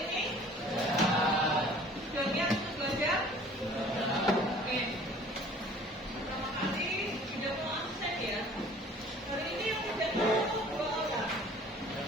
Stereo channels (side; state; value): both; normal; correlation 0.50